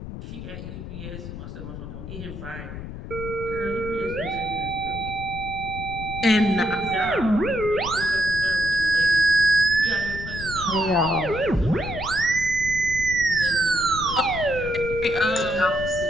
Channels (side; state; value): left; noise; rumble, 10 dB below the sound